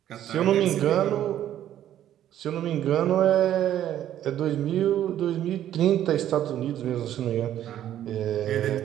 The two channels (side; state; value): left; quieter; 11.5 dB